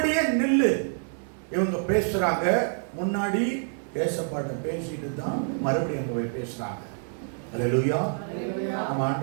நில்லு. இவங்க பேசுறாங்க. முன்னாடி ஏசப்பாட்ட பேசிட்டு தான் மறுபடியும் அங்க போய் பேசுறாங்க. அல்லேலூயா. நம்ம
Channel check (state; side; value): silent; left; 60 dB below the other